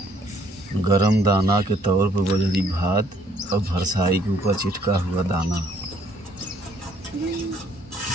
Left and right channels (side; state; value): both; normal; correlation 0.64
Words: गरम दाना के तौर पर बजरी भात और भरसाई के ऊपर चिटका हुआ दाना,